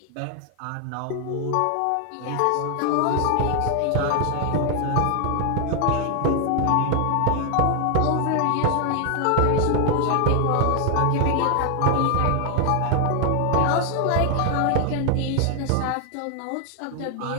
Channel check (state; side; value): different; both; correlation 0.00